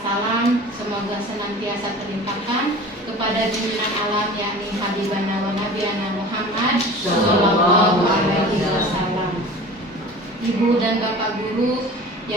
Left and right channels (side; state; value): both; normal; correlation 0.40